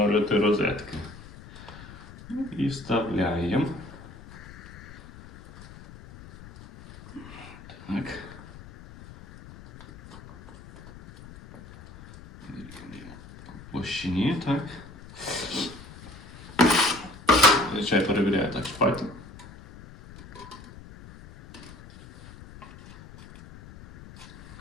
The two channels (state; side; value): noise; left; rumble, 17 dB below the sound